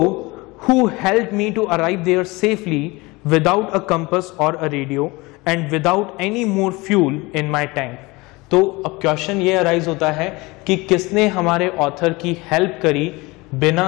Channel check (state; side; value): quieter; right; 23.5 dB